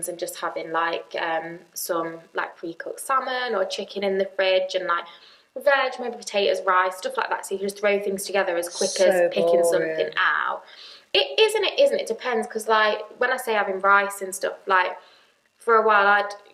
and just having like some like pre-cooked salmon or chicken in the fridge and like veg, maybe potatoes, rice, stuff like that. So you can just throw things together as quick as picking something out. It is and it isn't. It depends, because like when I say having rice and stuff, like for a while I'd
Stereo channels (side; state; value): both; identical; correlation 1.00